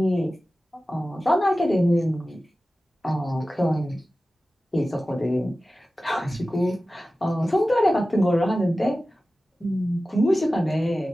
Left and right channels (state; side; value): normal; both; correlation 0.95